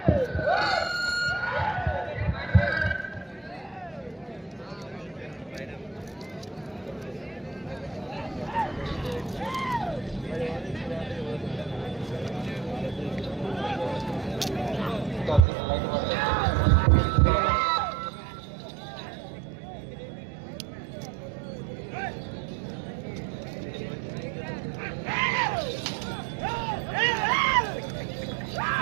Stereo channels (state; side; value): drops out; left; at 15.5 s